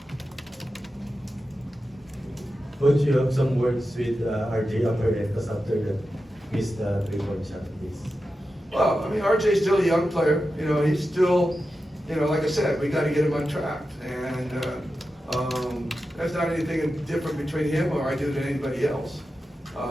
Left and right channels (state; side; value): normal; both; correlation 0.91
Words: Coach, you have some words with RJ Amaretas after the missed 3-point shot, please. Well, I mean, RJ's still a young player. You know, he's still, you know, like I said, we got to get him untracked. And that's not anything different between him or I do than anybody else.